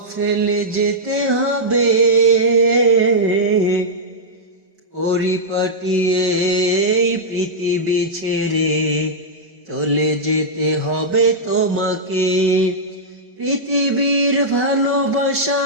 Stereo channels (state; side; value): late; left; 5.3 ms